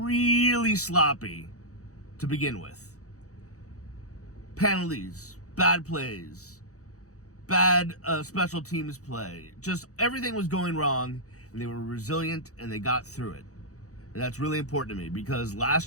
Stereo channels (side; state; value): right; late; 0.65 ms